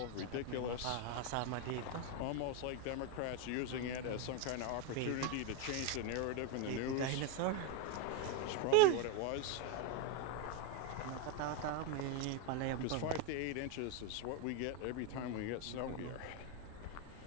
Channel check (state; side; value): different; both; correlation 0.02